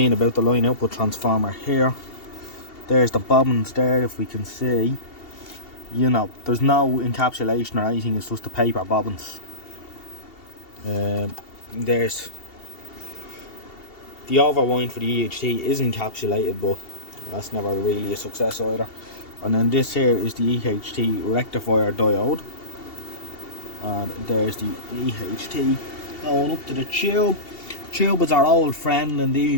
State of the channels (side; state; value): right; late; 2.7 ms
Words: about the line output transformer here. There's the bobbins there, if we can see. You know, there's no encapsulation or anything, it's just the paper bobbins. There's the overwind for the EHT is encapsulated, but that's never really a success either. And then this here is the EHT rectifier diode. And there's the EHT going up to the tube. Tube is our old friend in